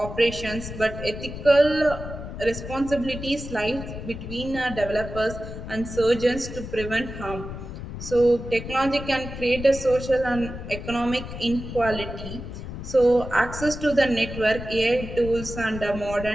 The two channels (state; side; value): noise; left; rumble, 9 dB below the sound